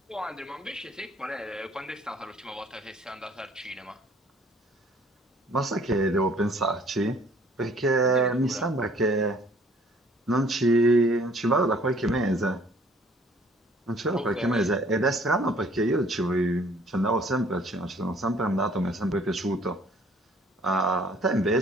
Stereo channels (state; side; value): normal; both; correlation 0.57